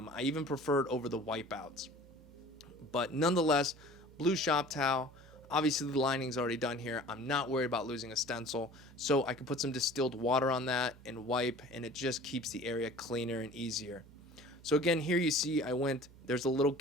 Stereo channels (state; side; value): noise; right; hum, 22 dB below the sound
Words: even prefer it over the wipeouts. But nonetheless, blue shop towel. Obviously the lining's already done here. I'm not worried about losing a stencil, so I can put some distilled water on that and wipe, and it just keeps the area cleaner and easier. So again, here you see there's a little